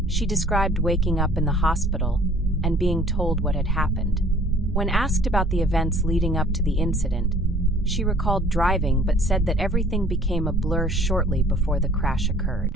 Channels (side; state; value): both; normal; correlation 0.54